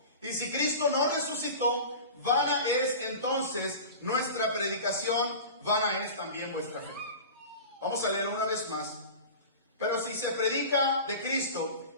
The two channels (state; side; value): inverted; both; correlation -0.34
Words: Y si Cristo no resucitó, vana es entonces nuestra predicación, vana es también vuestra fe. Vamos a leer una vez más. Pero si se predica de